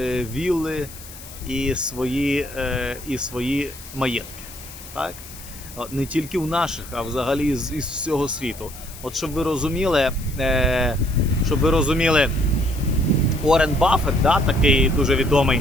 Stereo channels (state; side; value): noise; left; hiss, 16 dB below the sound